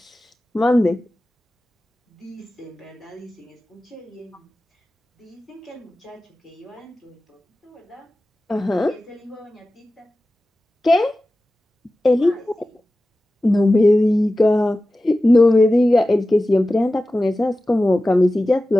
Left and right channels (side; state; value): both; normal; correlation 0.95